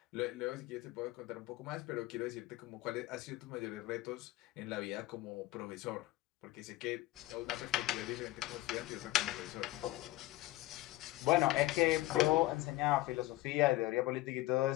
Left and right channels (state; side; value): quieter; right; 17.7 dB